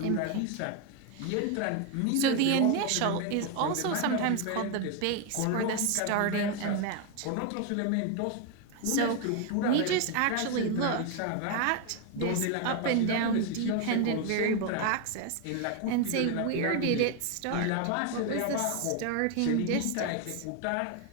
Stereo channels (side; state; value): both; different; correlation 0.01